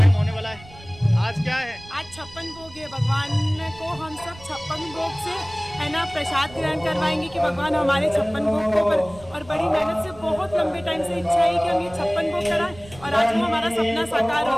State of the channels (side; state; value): right; noise; rumble, 20 dB below the sound